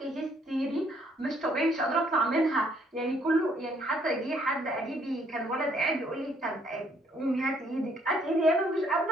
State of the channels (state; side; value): normal; both; correlation 0.67